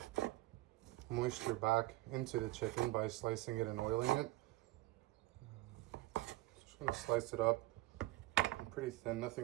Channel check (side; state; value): left; quieter; 18.5 dB